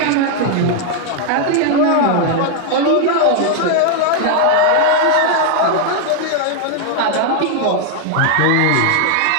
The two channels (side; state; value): both; different; correlation 0.00